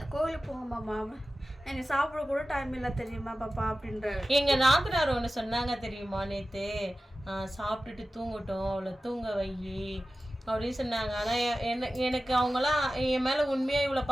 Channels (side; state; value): both; normal; correlation 0.95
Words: கோவிலுக்கு போங்க மாமா, எனக்கு சாப்பிட கூட டைம் இல்லை தெரியுமா பாப்பா அப்படின்ற. எங்கள் நாத்தனார் ஒன்று சொன்னாங்க தெரியுமா, நேற்று சாப்பிட்டுட்டு தூங்கட்டும், அவளை தூங்க வை அப்படின்னு சொன்னாங்க. ஆனால் எனக்கு அவங்களாம் என் மேலே உண்மையாக இவ்வளோ